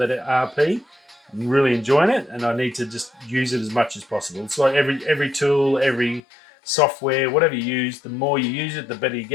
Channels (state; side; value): drops out; right; at 6.2 s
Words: RP. I'm really enjoying it, and I need to just use it as much as possible. It's like every tool, every software, whatever you use, the more you use it, the better you